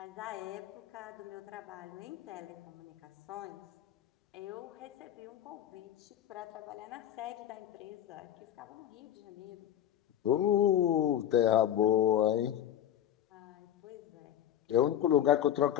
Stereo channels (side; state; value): right; quieter; 10.8 dB